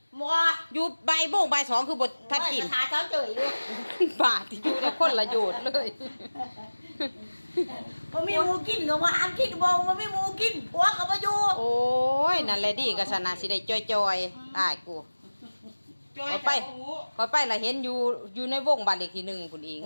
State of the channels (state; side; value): inverted; both; correlation -1.00